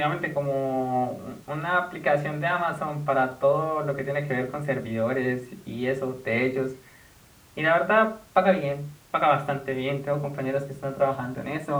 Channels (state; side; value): identical; both; correlation 1.00